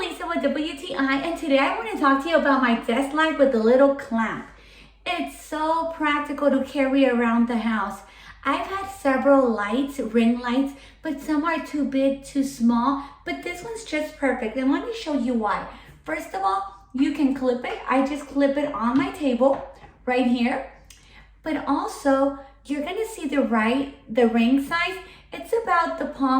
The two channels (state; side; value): identical; both; correlation 1.00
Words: with WTI, and today I want to talk to you about my desk light with the little clamp. It's so practical to carry around the house. I've had several lights, ring lights, but some are too big, too small, but this one's just perfect. And let me show you why. First of all, you can clip it. I just clip it on my table right here. But also, you're gonna see the ring size. It's about the